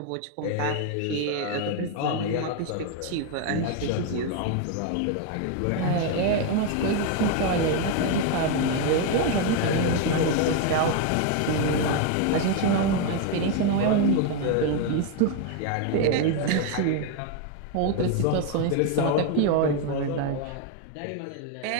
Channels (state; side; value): different; both; correlation 0.01